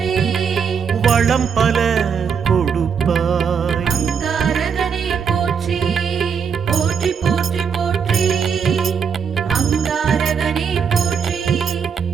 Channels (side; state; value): left; quieter; 6.7 dB